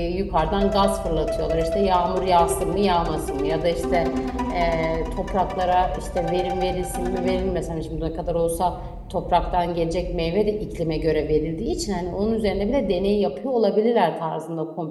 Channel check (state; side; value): identical; both; correlation 1.00